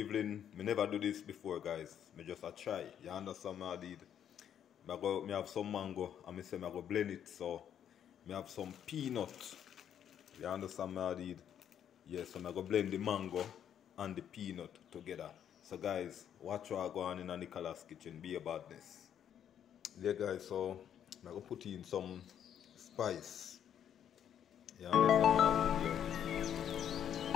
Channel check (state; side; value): quieter; right; 9.4 dB